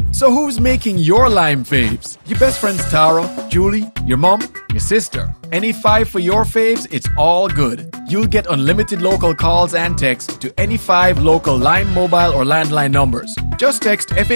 So who's making your lime faves? Your best friends Tara, Julie, your mom, your sister. Any 5 for your faves, it's all good. You'll get unlimited local calls and texts to any 5 local Lime mobile or landline numbers. Just text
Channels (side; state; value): both; inverted; correlation -1.00